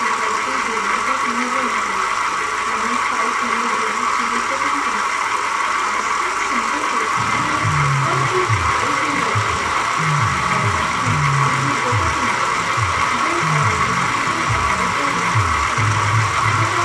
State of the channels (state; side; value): identical; both; correlation 1.00